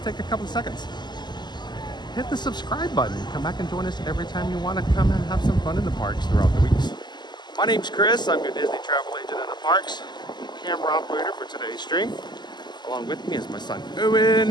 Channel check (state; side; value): late; right; 0.21 ms